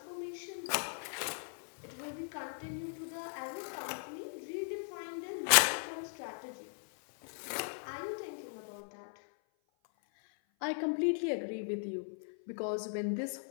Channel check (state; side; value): silent; right; 52 dB below the other